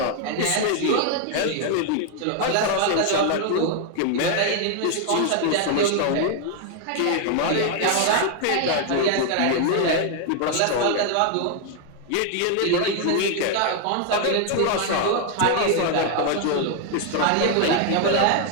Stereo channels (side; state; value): both; different; correlation 0.00